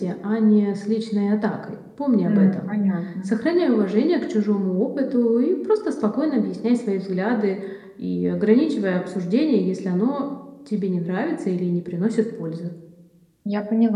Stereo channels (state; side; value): identical; both; correlation 1.00